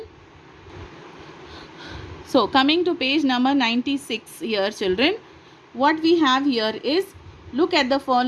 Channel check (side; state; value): both; identical; correlation 1.00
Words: So coming to page number 96 here, children, what we have here is, look at the